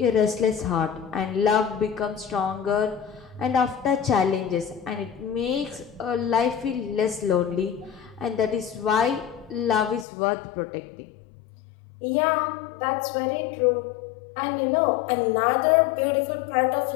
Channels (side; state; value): right; drops out; at 10.1 s